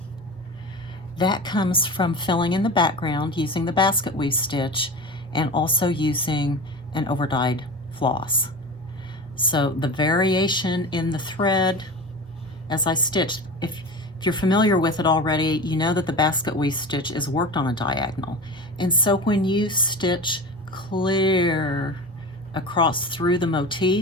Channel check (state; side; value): normal; both; correlation 0.30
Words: That comes from filling in the background using the basket weave stitch and also using an overdyed floss. So the variation in the thread as I stitch, if you're familiar with it already, you know that the basket weave stitch is worked on a diagonal. And so when you stitch clear across through the